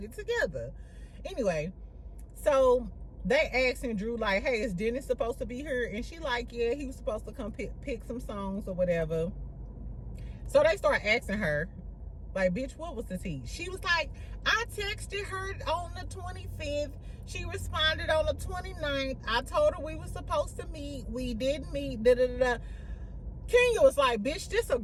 it together. Anyway, so they asking Drew, like, hey, is Dennis supposed to be here? And she like, yeah, he was supposed to come pick some songs or whatever. So they start asking her, like, bitch, what was the tea? She was like, I texted her on the 25th. She responded on the 29th. I told her we were supposed to meet. We didn't meet. Da-da-da-da. Kenya was like, bitch, this is a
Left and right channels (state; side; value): identical; both; correlation 1.00